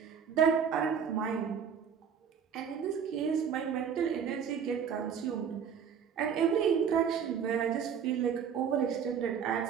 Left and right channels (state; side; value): quieter; left; 7.5 dB